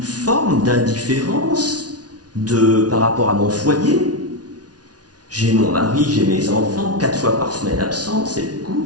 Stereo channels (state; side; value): late; left; 0.69 ms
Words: forme d'indifférence par rapport à mon foyer ? J'ai mon mari, j'ai mes enfants, 4 fois par semaine absents, c'est